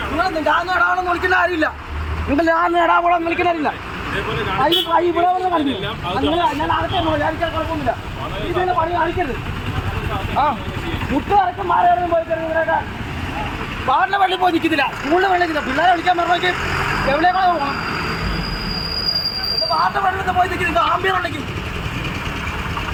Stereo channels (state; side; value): identical; both; correlation 1.00